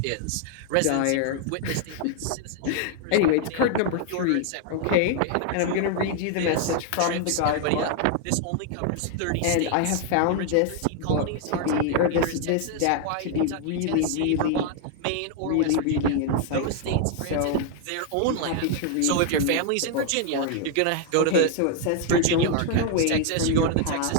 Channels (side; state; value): both; different; correlation 0.00